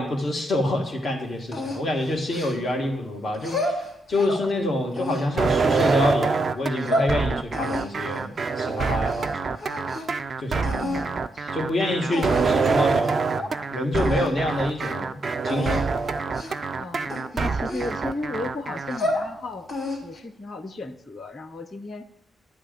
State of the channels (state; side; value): normal; both; correlation 0.80